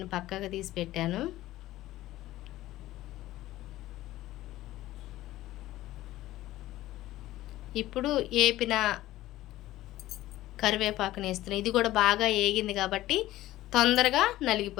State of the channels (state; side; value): quieter; right; 15.7 dB